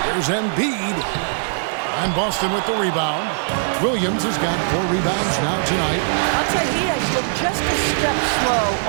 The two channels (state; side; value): silent; left; digital silence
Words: Here's Embiid. And Boston with the rebound. Williams has got 4 rebounds now tonight. I'll tell you, he has looked just a step slow